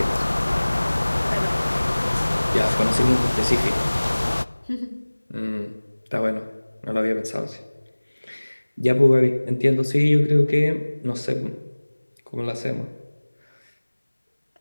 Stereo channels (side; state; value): both; inverted; correlation -1.00